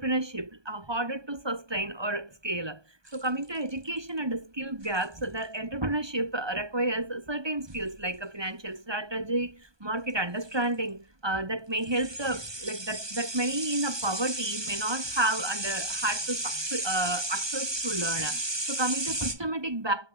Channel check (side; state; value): left; late; 1.2 ms